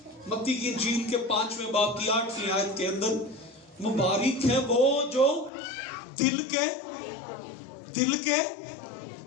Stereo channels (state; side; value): drops out; right; at 5.5 s